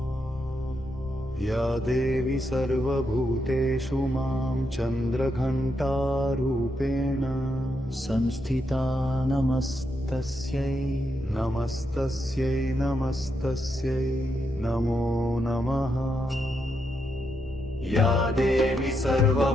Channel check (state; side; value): normal; both; correlation 0.81